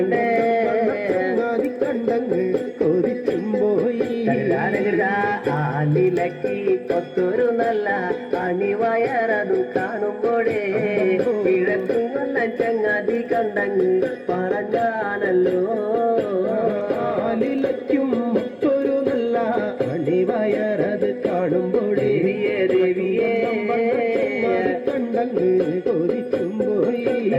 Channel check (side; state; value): both; identical; correlation 1.00